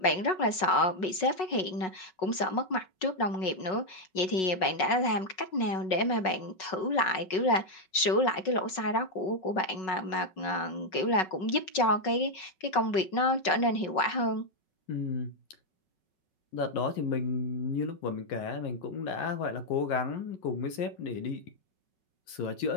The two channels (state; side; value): late; right; 5.4 ms